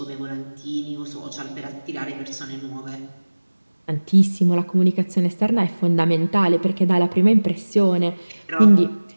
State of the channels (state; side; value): inverted; both; correlation -1.00